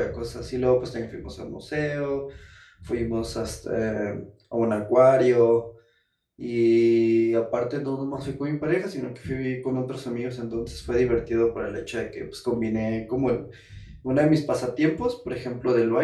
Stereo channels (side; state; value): both; identical; correlation 1.00